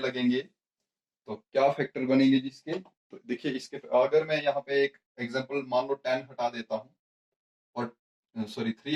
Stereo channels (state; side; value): identical; both; correlation 1.00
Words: तो क्या फैक्टर बनेंगे जिसके, तो देखिए इसके अगर मैं यहाँ पे एक एग्जांपल मान लो 10 हटा देता हूँ और सॉरी